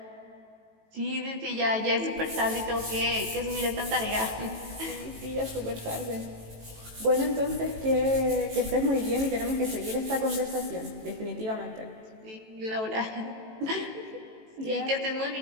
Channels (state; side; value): late; left; 18 ms